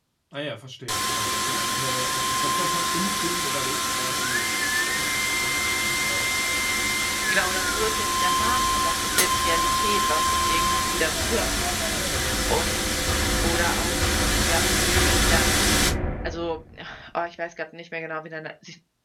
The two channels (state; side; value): identical; both; correlation 1.00